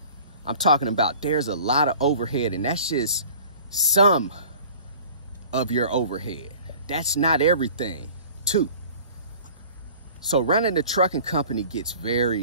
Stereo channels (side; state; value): both; inverted; correlation -0.46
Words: I'm talking about there's a lot of overhead, and that's just some of your overhead. That's not everything, too. So running a trucking company gets